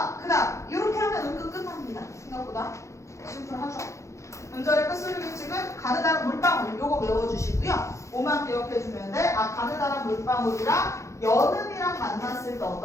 그다음 이렇게 하면 은근 끝납니다. 생각보다 심플하죠. 문절의 끝소리 규칙은 가느다란 물방울 요거 외워주시고요. 5만 기억해주면 돼. 가느다란 물방울이랑 연음이랑 만났을 때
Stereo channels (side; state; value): right; late; 0.15 ms